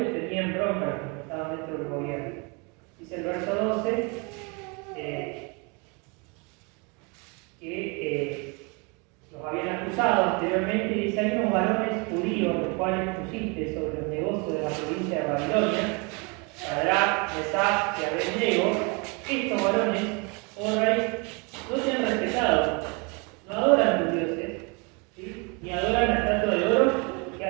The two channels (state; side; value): quieter; left; 31.1 dB